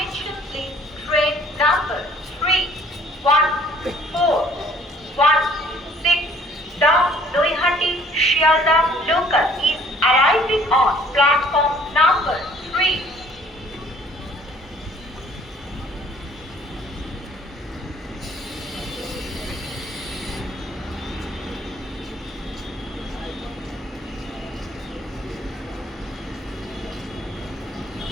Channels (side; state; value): both; normal; correlation 0.57